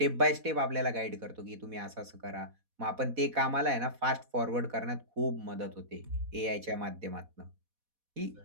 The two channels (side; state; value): left; late; 4.1 ms